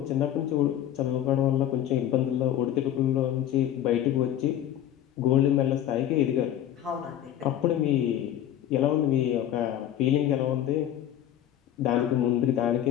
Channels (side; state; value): right; quieter; 11.5 dB